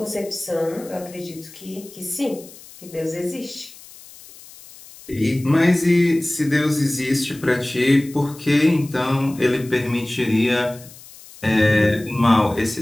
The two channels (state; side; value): noise; left; hiss, 20 dB below the sound